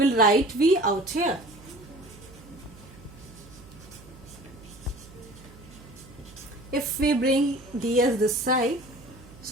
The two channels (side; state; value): right; noise; hum, 20 dB below the sound